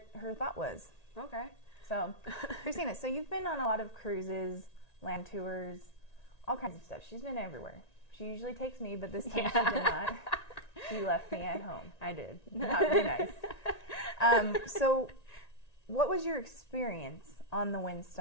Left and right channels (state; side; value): late; right; 1.9 ms